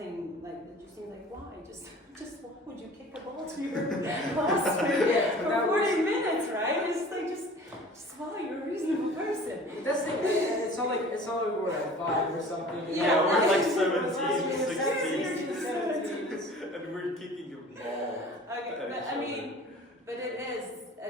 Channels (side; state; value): both; normal; correlation 0.45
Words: like that. You think like, why? Just why would you kick a ball to your classmate for 40 minutes, right? It's like just why? You're a reasonable person. That's the thing. It's not like we're at 5 or something. Yeah, we're like 17, 17. and we're kicking a ball. Okay, but I mean, but it is